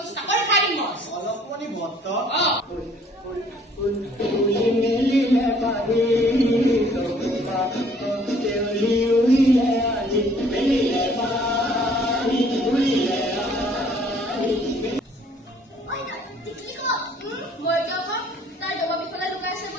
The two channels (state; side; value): normal; both; correlation 0.58